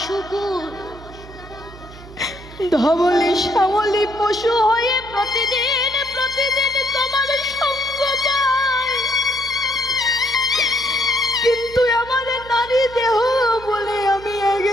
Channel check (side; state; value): right; noise; hum, 18 dB below the sound